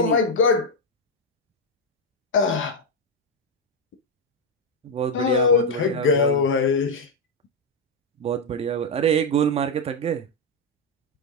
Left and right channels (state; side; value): normal; both; correlation 0.02